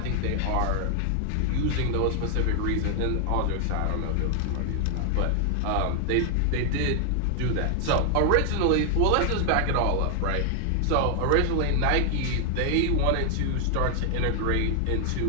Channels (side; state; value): both; different; correlation 0.00